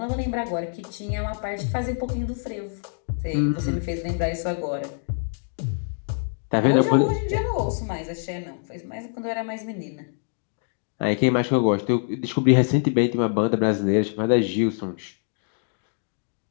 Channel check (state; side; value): silent; right; digital silence